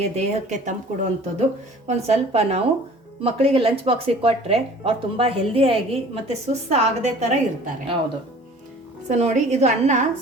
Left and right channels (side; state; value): both; normal; correlation 0.48